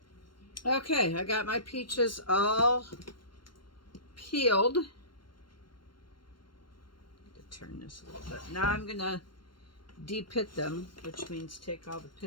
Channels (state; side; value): late; right; 0.72 ms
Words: Okay, I got my peaches all peeled. Turn this a little bit. Now I'm going to de-pit them, which means take all the